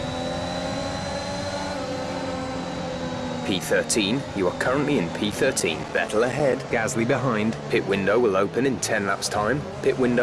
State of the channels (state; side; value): identical; both; correlation 1.00